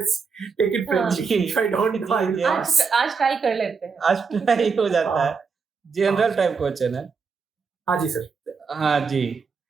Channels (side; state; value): left; quieter; 5.3 dB